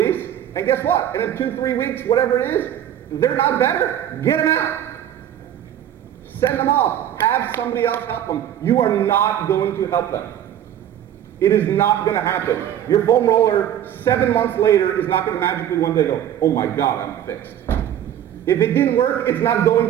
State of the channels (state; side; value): quieter; left; 10.6 dB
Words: and guess what? In 2-3 weeks, whatever it is, they're not better. Get them out. Send them off. Have somebody else help them. You are not going to help them. It is not going to happen. Your foam roller, 7 months later, is not going to magically one day go, oh my God, I'm fixed. If it didn't work, it's not